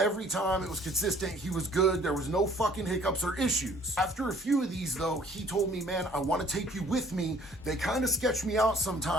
time it was consistent, he was good. There was no fucking hiccups or issues. After a few of these though, he told me, man, I want to take you with me. They kind of sketch me out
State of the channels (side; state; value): both; normal; correlation 0.57